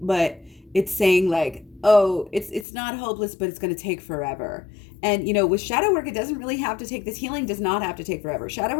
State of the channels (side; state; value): right; drops out; at 2.7 s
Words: but it's saying like, oh, it's not hopeless, but it's going to take forever. And with shadow work, it doesn't really have to take, this healing does not have to take forever. Shadow